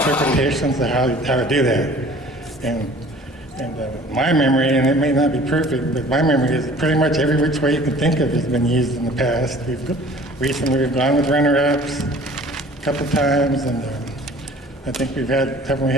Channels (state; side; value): normal; both; correlation 0.49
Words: of how to do that. And my memory, and it may not be perfect, but my memory is pretty much every which way you can think of has been used in the past. Recently we've gone with runner-ups a couple times, and I think haven't we